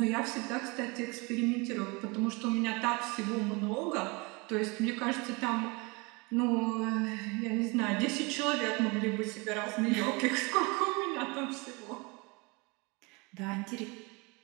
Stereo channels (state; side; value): quieter; left; 27.7 dB